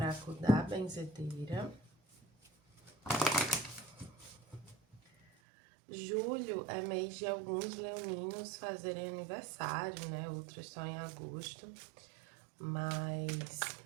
da Benzedeira. Julho é mês de alguns leoninos fazerem aniversário, né? Outros só em agosto. Mas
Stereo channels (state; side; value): drops out; left; at 5.2 s